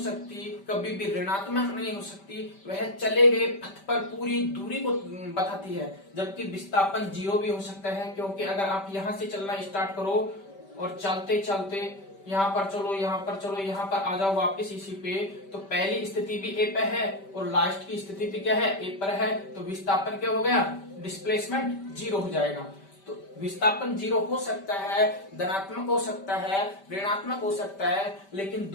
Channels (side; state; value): right; late; 5.1 ms